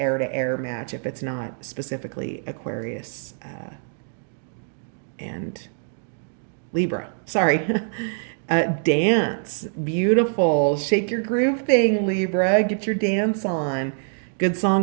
to air match if it's not specifically Aquarius and Libra. Sorry. Dance. Beautiful. Shake your groove thing, Libra. Get your dance on. Good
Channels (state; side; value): silent; left; digital silence